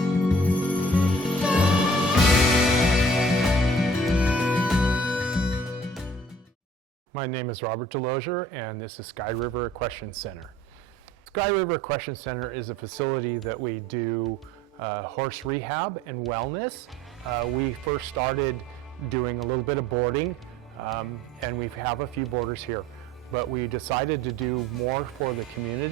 My name is Robert Delosier, and this is Sky River Equestrian Center. Sky River Equestrian Center is a facility that we do horse rehab and wellness. We first started doing a little bit of boarding, and we have a few boarders here. But we decided to do more for the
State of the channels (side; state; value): both; normal; correlation 0.51